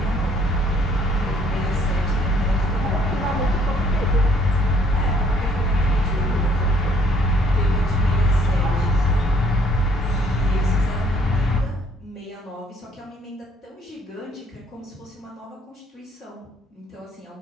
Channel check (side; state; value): both; normal; correlation 0.62